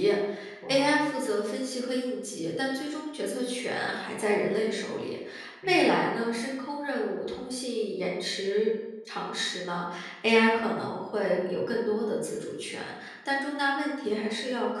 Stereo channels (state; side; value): identical; both; correlation 1.00